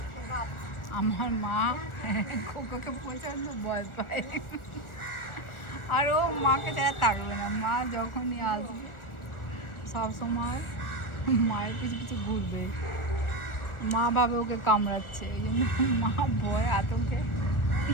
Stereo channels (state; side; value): late; right; 1.4 ms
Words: আমার মা খোকাকে প্রচন্ড ভয় পায়, আর ও মাকে ছাড়া থাকবে না। মা যখনই আসবে সবসময় মায়ের পিছু পিছু ঘুরবে, মা ভাবে ওকে কামড়াচ্ছে, এই জন্য মা ভয় আতঙ্কে।